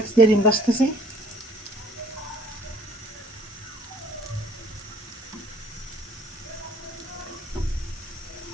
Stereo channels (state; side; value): normal; both; correlation 0.56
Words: দিয়ে ডিম ভাজতেছি।